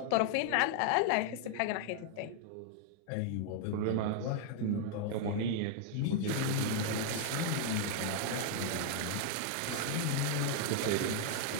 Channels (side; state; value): both; different; correlation 0.00